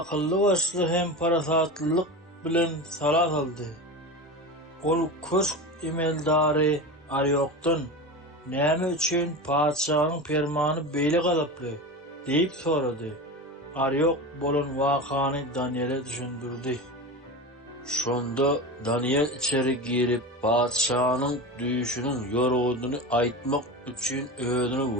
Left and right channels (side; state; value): both; normal; correlation 0.26